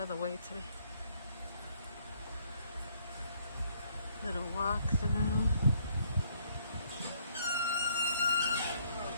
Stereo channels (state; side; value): inverted; both; correlation -0.66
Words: the way today. Little walk through.